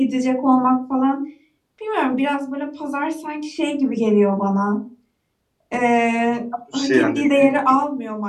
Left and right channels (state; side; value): identical; both; correlation 1.00